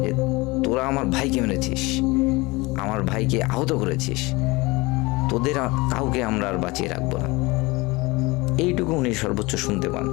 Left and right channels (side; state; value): right; quieter; 23.4 dB